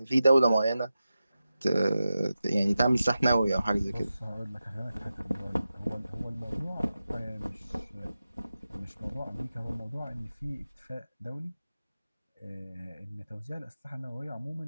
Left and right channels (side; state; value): both; inverted; correlation -0.92